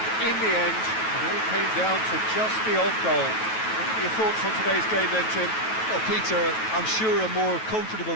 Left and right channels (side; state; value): right; late; 9.2 ms